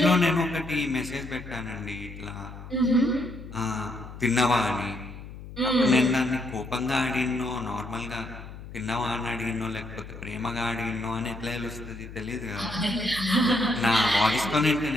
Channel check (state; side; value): noise; left; hum, 13 dB below the sound